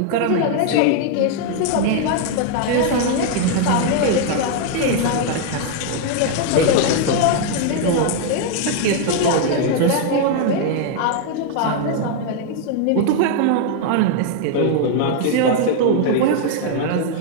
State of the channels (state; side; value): different; both; correlation 0.00